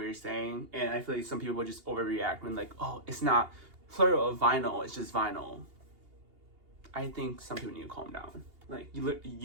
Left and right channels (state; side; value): late; left; 2.8 ms